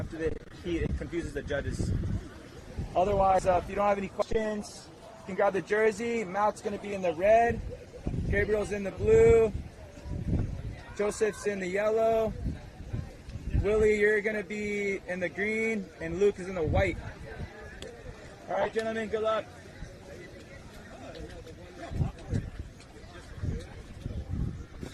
the heat. It confuses the judges. Otherwise, if you don't have any questions, you can grab the jersey. Matt's going to be in the red. Gabriel's in the blue. Joseph's in the yellow. Willie, you're going to be in the green, and Luke is in the white. All right, gentlemen, good luck.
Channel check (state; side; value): identical; both; correlation 1.00